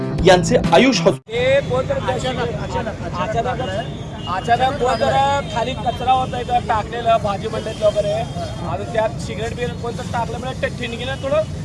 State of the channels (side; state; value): both; identical; correlation 1.00